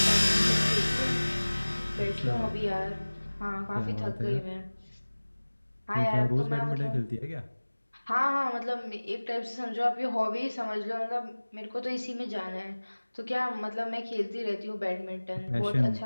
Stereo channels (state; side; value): inverted; both; correlation -1.00